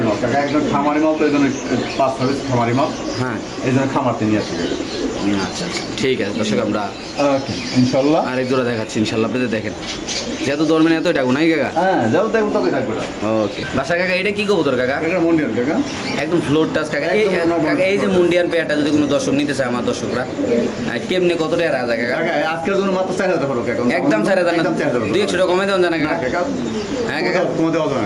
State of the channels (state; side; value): identical; both; correlation 1.00